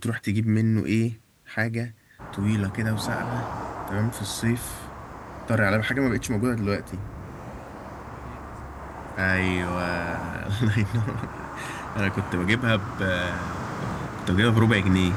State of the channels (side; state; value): both; identical; correlation 1.00